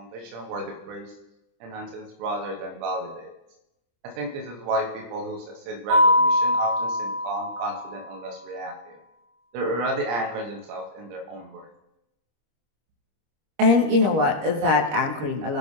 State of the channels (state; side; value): late; left; 26 ms